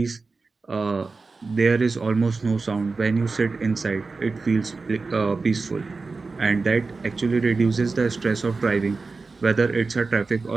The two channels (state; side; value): quieter; left; 4.0 dB